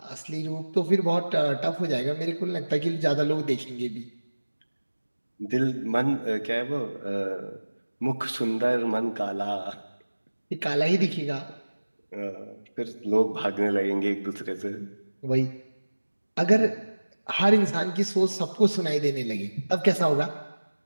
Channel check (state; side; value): inverted; both; correlation -1.00